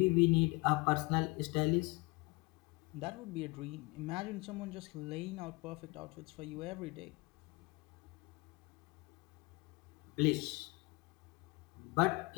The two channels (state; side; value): quieter; right; 25.4 dB